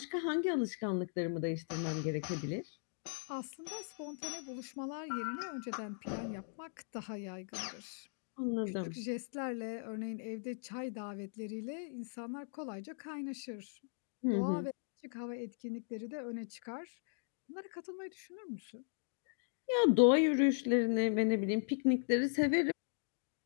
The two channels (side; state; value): right; silent; digital silence